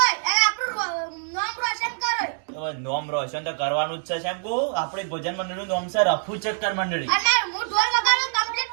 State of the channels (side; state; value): left; silent; 62 dB below the other